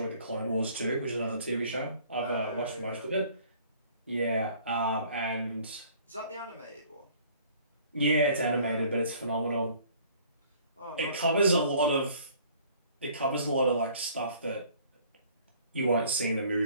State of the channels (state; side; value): inverted; both; correlation -0.54